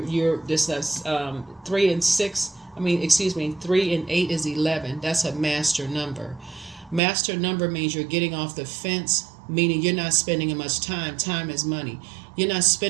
this 3 and 6. I mean, excuse me, 3 and 8 is 11. That's a master number. Master number means you're getting off the fence, meaning you're not spending as much time. Time is money. You're not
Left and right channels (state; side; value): drops out; left; at 7.0 s